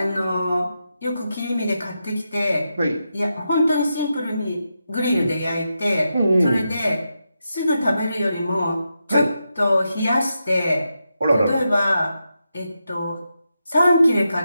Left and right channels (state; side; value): inverted; both; correlation -0.87